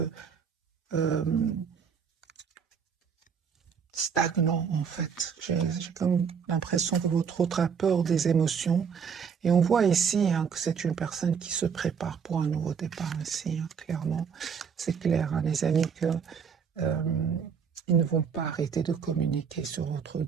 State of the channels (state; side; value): quieter; left; 6.7 dB